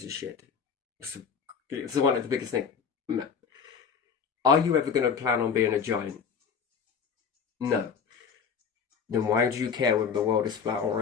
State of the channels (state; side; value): quieter; right; 6.5 dB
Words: a shit? It's one of the biggest things. Are you ever going to plan on being a giant? No. Then why do you care whether the world is flat or